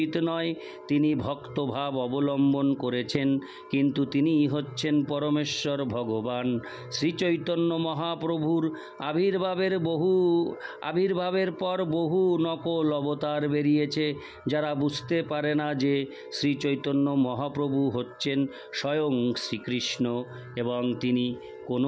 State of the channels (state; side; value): identical; both; correlation 1.00